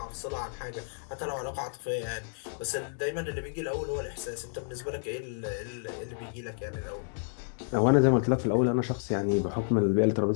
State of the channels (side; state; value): right; silent; digital silence